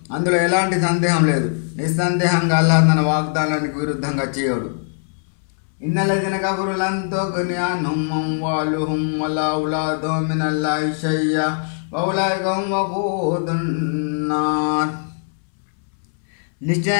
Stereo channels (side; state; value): right; silent; 62 dB below the other